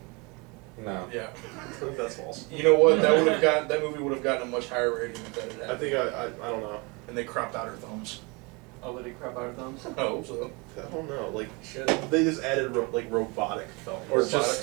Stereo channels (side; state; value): left; quieter; 28.6 dB